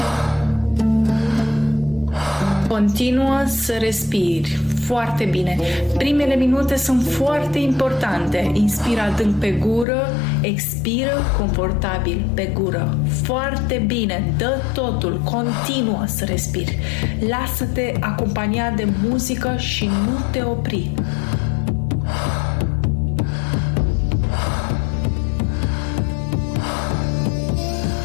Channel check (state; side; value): drops out; right; at 9.9 s